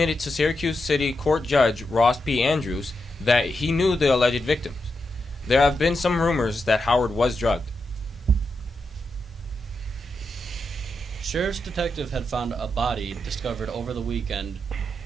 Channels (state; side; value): normal; both; correlation 0.86